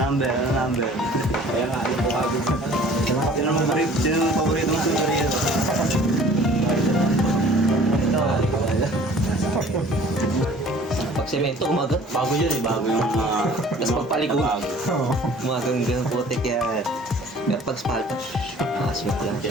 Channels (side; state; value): both; normal; correlation 0.50